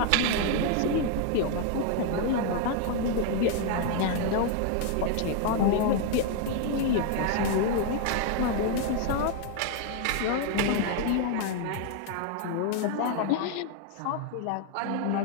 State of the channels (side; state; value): both; different; correlation 0.00